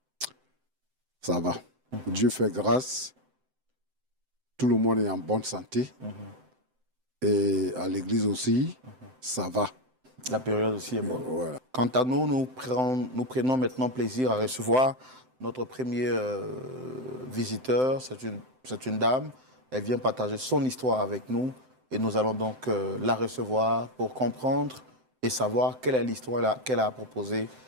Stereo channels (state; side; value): late; left; 7.8 ms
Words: Ça va. Dieu fait grâce. Tout le monde est en bonne santé. Et à l'église aussi, ça va. La période aussi est bonne. Voilà. Quant à nous, nous prenons maintenant plaisir à recevoir notre premier visiteur. C'est une dame. Elle vient partager son histoire avec nous. Et nous allons donc la recevoir pour comprendre et savoir quelle est l'histoire qu'elle a proposée